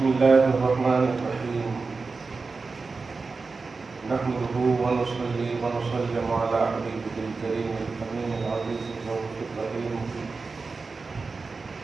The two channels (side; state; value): left; quieter; 4.2 dB